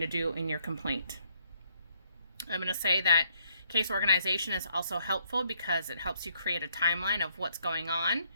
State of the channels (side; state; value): both; inverted; correlation -0.69